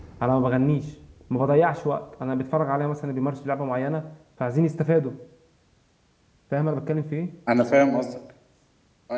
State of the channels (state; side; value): identical; both; correlation 1.00